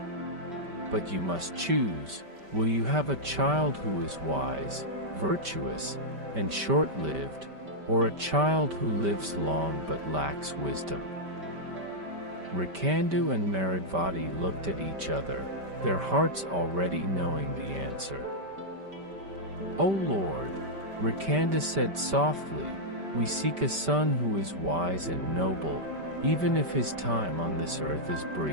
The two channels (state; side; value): late; left; 5.1 ms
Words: "But you must choose. Will you have a child who is wise, virtuous, and short-lived, or a child who lives long but lacks wisdom?" Markandeya and Markandeya looked at each other, their hearts already knowing the answer. "O Lord," Markandeya said softly, "we seek a son who is wise and noble, even if his time on this earth is